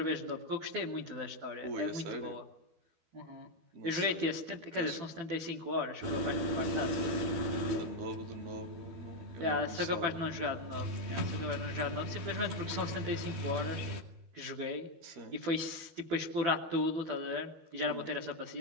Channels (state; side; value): late; left; 12 ms